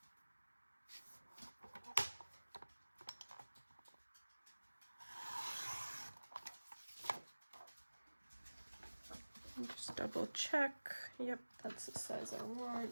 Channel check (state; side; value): inverted; both; correlation -1.00